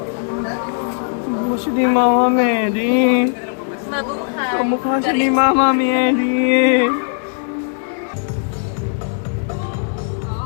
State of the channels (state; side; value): silent; right; digital silence